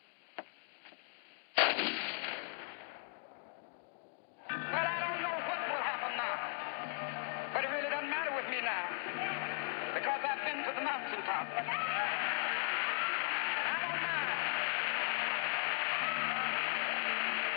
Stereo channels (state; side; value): silent; right; 53 dB below the other